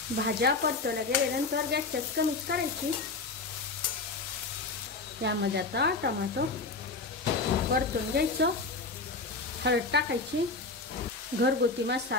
भाज्या परतवल्या गेल्यानंतर गॅसची आच कमीच करायची. यामध्ये आता टोमॅटो परतून घ्यायचं. हळद टाकायची, घरगुती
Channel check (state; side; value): quieter; right; 3.8 dB